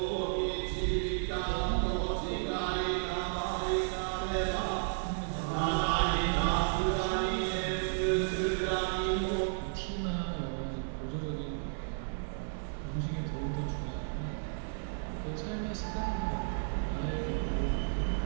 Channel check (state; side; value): silent; left; digital silence